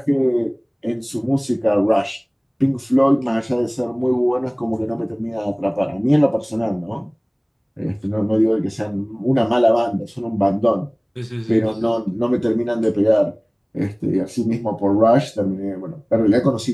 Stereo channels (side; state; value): both; identical; correlation 1.00